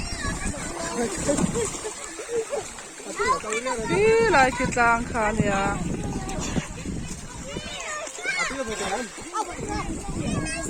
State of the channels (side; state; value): both; identical; correlation 1.00